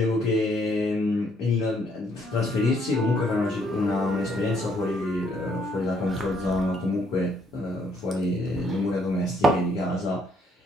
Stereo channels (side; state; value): both; normal; correlation 0.68